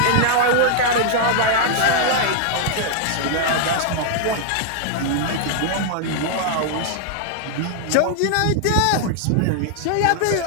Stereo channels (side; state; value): both; different; correlation -0.01